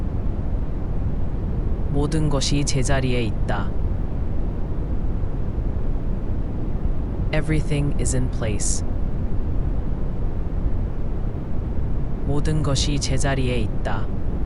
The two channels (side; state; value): both; identical; correlation 1.00